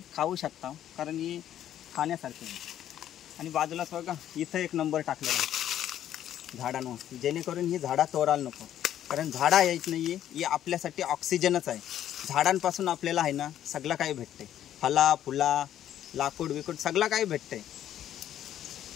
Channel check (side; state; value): right; quieter; 11.2 dB